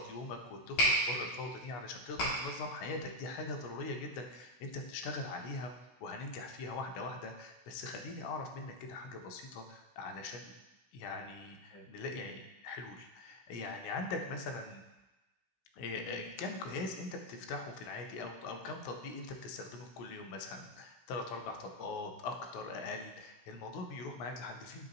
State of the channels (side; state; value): right; late; 16 ms